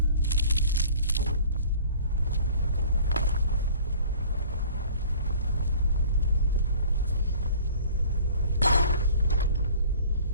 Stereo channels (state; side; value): inverted; both; correlation -0.48